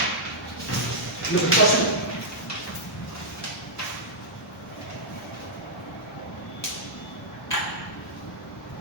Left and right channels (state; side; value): normal; both; correlation -0.10